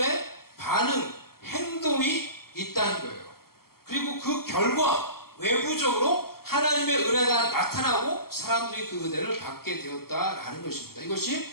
반응, 행동이 있다는 거예요. 그리고 그 결과 외부적으로 하나님의 은혜가 나타나고 사람들이 그 은혜를 받게 되었다라는 것입니다. 이것이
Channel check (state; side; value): late; right; 0.94 ms